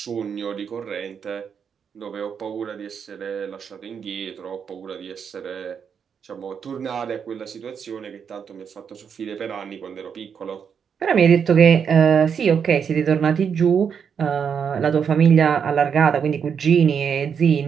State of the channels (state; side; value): quieter; left; 7.1 dB